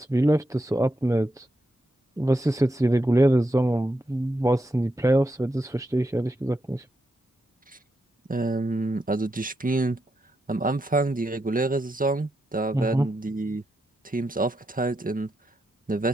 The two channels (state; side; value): normal; both; correlation 0.84